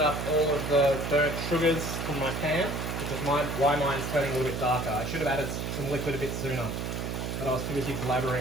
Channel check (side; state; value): right; noise; hum, 3 dB below the sound